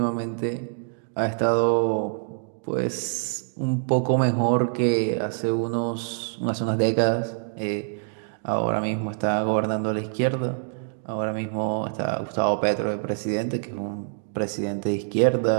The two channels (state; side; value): silent; left; digital silence